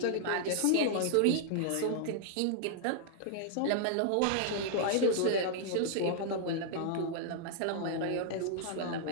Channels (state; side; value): different; both; correlation -0.01